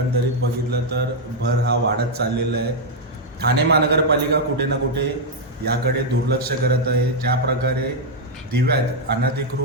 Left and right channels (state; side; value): normal; both; correlation -0.01